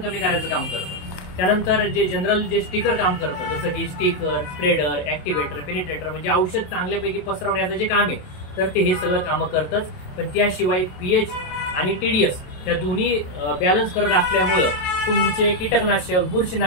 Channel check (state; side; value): late; right; 27 ms